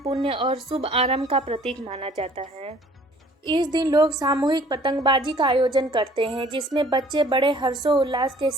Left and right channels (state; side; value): normal; both; correlation 0.55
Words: और शुभ आरंभ का प्रतीक माना जाता है। इस दिन लोग सामूहिक पतंगबाजी का आयोजन करते हैं, जिसमें बच्चे बड़े हर्षोल्लास के